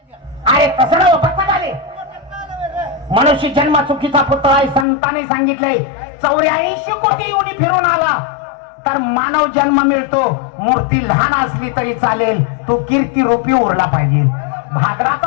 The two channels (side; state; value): right; drops out; at 4.9 s